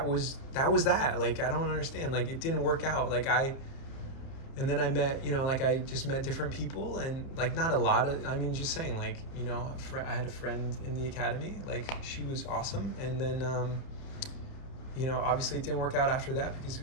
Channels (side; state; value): right; late; 30 ms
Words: was that. Like, I don't understand. Like, it didn't work out. And then I met, you know, like I just met different people, and like not a lot of, I mean, just saying, like, you know, I had a friend in the academy, like she was awesome. And then, you know, obviously it didn't work out after that because